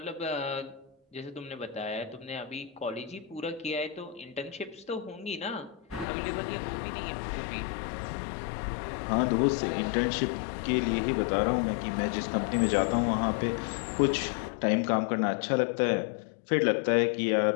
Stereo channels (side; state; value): right; drops out; at 6.1 s